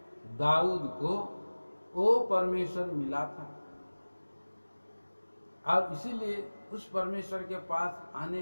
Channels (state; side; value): inverted; both; correlation -1.00